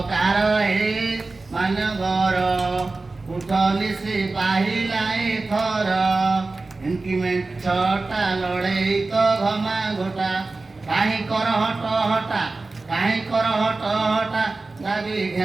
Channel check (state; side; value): quieter; left; 3.5 dB